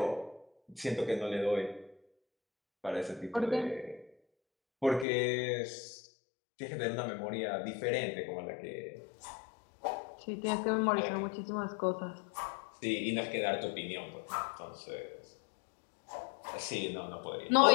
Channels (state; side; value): drops out; right; at 5.1 s